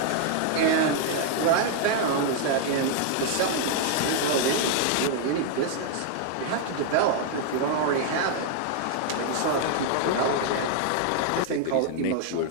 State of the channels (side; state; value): both; different; correlation 0.00